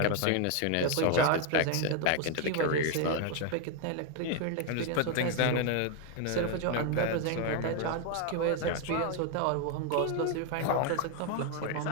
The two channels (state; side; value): different; both; correlation 0.01